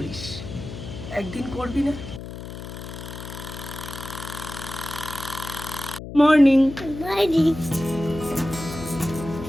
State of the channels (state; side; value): noise; left; hum, 10 dB below the sound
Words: একদিন করবি না? Morning.